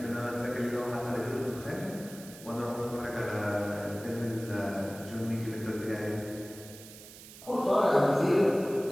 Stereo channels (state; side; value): noise; right; hiss, 17 dB below the sound